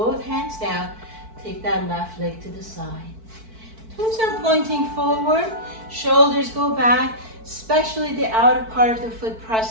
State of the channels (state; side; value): late; left; 4.5 ms